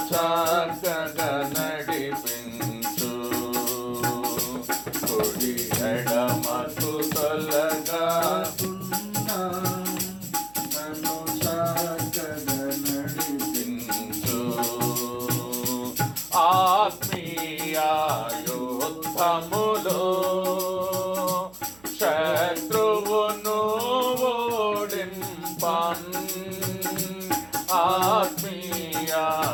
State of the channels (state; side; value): noise; right; hum, 25 dB below the sound